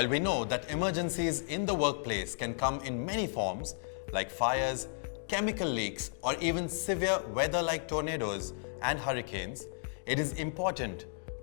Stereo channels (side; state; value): right; silent; digital silence